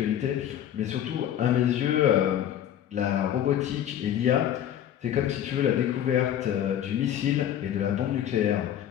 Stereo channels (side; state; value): right; quieter; 10.6 dB